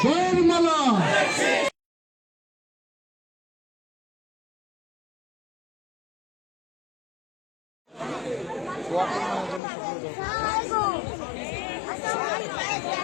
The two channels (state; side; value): drops out; right; at 9.6 s